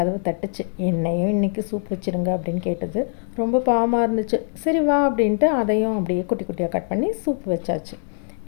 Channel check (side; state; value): right; silent; digital silence